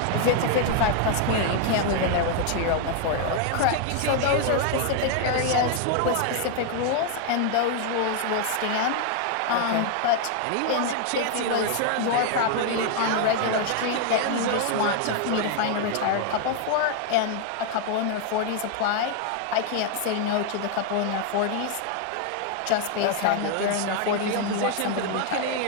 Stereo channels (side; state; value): both; different; correlation 0.00